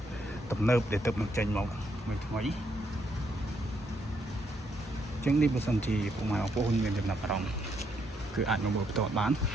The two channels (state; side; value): normal; both; correlation 0.75